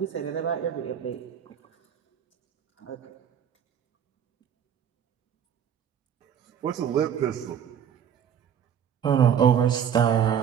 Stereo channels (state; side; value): quieter; left; 8.6 dB